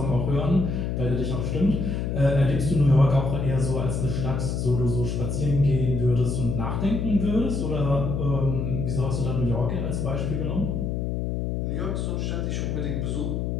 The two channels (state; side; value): noise; left; hum, 1 dB below the sound